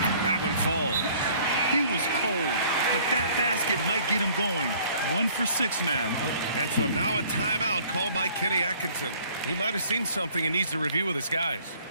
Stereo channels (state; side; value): inverted; both; correlation -0.56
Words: that one falls. He was cold, but that basket might get him going. 1 for 6 now. And so now a timeout called by Kenny Atkinson. He might have seen something and needs to review with his guys.